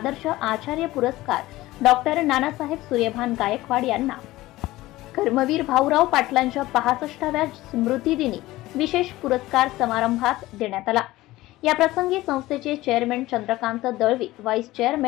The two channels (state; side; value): quieter; right; 17.6 dB